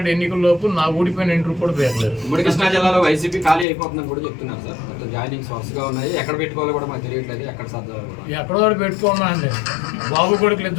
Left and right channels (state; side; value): drops out; right; at 3.7 s